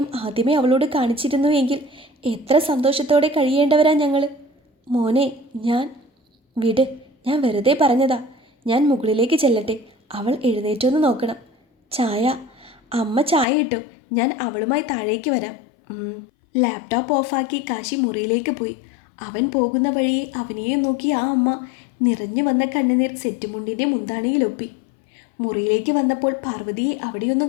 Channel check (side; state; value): right; drops out; at 13.5 s